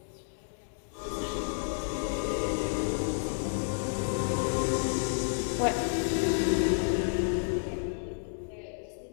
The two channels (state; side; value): silent; right; digital silence